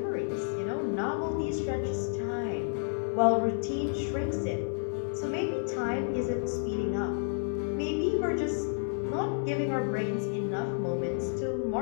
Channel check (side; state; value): right; silent; 57 dB below the other